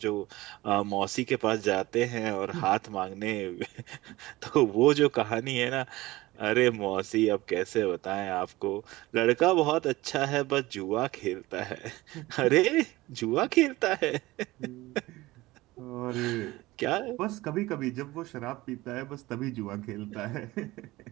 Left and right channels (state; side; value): quieter; left; 19.2 dB